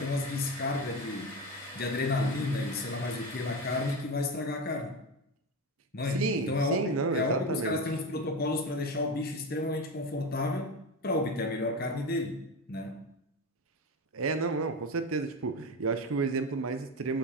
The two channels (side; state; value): both; normal; correlation 0.21